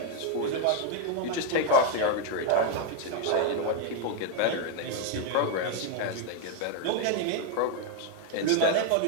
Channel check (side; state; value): both; different; correlation 0.01